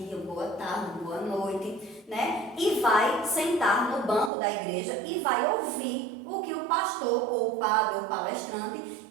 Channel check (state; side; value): drops out; left; at 4.3 s